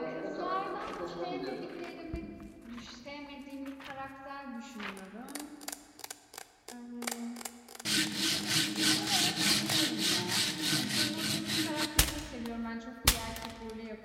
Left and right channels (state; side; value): identical; both; correlation 1.00